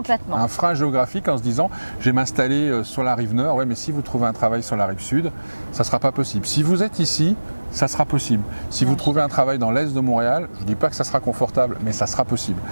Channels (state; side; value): inverted; both; correlation -1.00